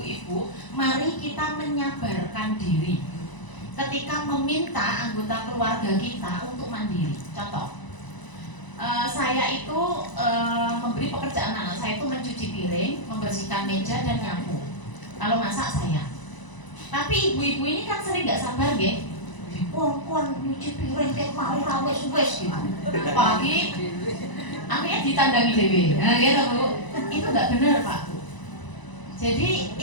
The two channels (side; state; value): right; late; 1.0 ms